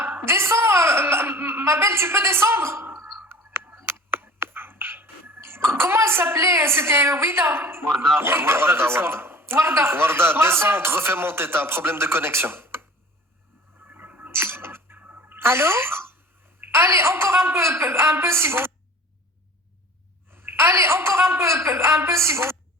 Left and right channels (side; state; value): both; normal; correlation 0.43